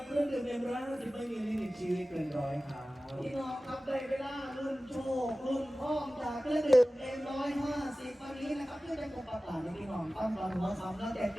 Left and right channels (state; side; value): normal; both; correlation 0.97